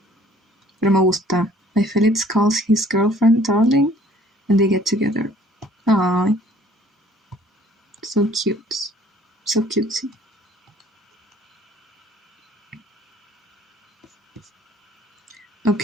Pero me gusta. My Felix calls his girlfriend darling and they get together. Aww. So cute. So cutesy.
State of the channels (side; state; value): both; normal; correlation 0.56